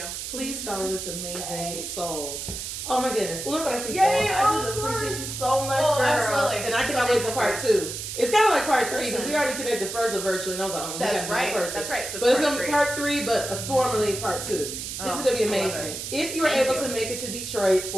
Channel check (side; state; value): right; noise; hiss, 6 dB below the sound